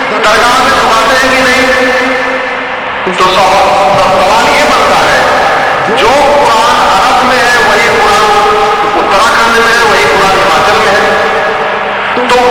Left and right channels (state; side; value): identical; both; correlation 1.00